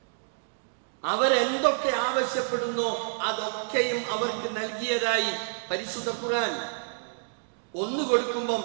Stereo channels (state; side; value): silent; left; digital silence